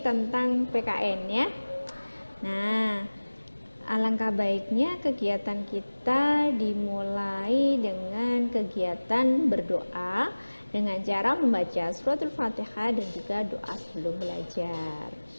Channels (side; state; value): both; inverted; correlation -1.00